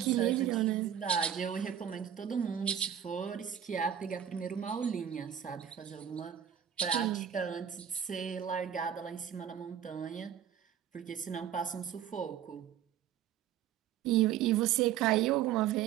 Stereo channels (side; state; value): left; quieter; 9.6 dB